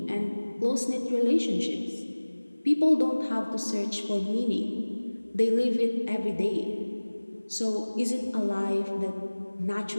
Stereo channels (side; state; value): both; inverted; correlation -1.00